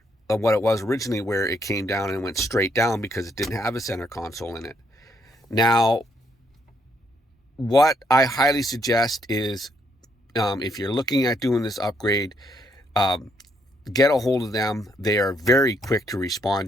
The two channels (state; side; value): normal; both; correlation 0.73